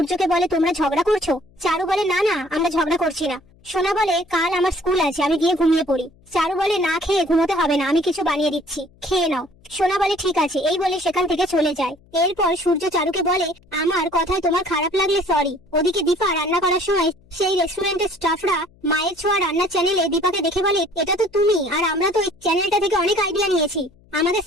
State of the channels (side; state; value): left; noise; hum, 29 dB below the sound